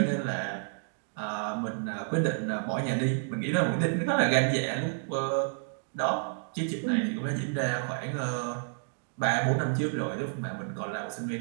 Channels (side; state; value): left; silent; digital silence